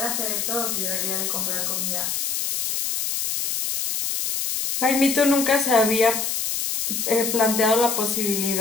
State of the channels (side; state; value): left; noise; hiss, 1 dB below the sound